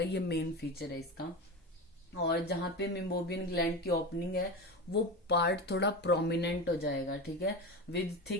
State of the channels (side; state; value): both; normal; correlation 0.24